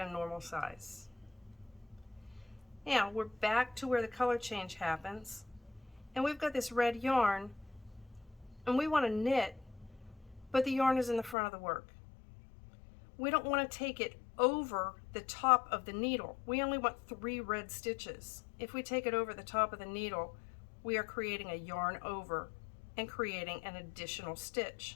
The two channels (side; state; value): right; drops out; at 11.4 s